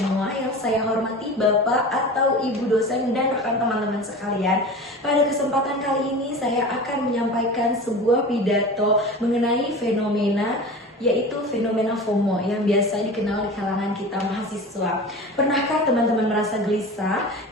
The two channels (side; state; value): both; normal; correlation 0.34